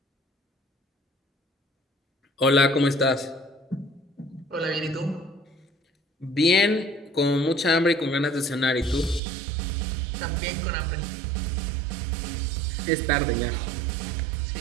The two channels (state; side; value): drops out; left; at 9.2 s